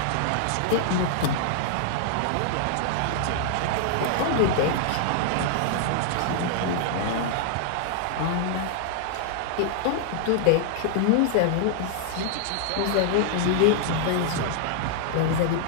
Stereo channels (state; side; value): different; both; correlation 0.00